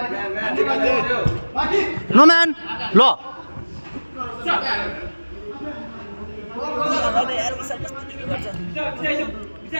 नो म्यान ल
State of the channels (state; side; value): inverted; both; correlation -1.00